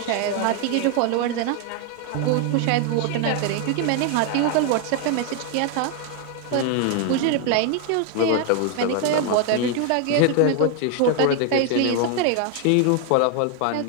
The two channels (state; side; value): different; both; correlation 0.01